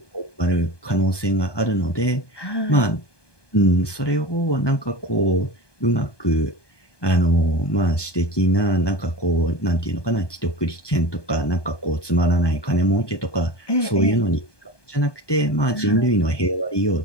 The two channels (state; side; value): late; right; 1.2 ms